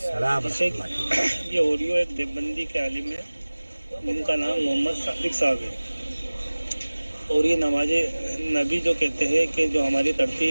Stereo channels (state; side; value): inverted; both; correlation -1.00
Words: जैसे ये ऑडियो एक देवबंदी के आलिम है, उनका नाम मोहम्मद सादिक साहब है, और ये नमाज नबी जो कहते हैं कि जो हमारी